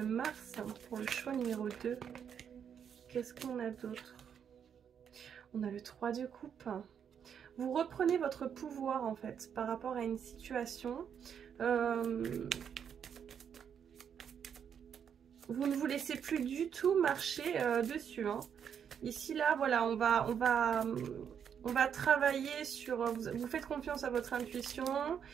pour le choix numéro 2. Qu'est-ce qu'on a d'autre? On a le 3 de coupe. Vous reprenez votre pouvoir en fait par rapport à une situation. Vous ne vous laissez plus du tout marcher dessus. Ici là, voilà, on va travailler sur... Vous faites confiance à votre intuition,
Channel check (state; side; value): quieter; left; 8.0 dB